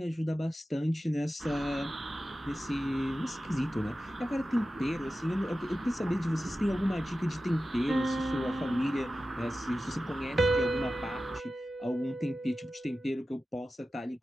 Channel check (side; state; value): both; normal; correlation 0.94